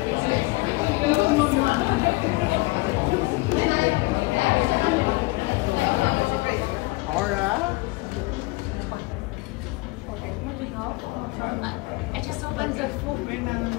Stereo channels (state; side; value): quieter; right; 23.2 dB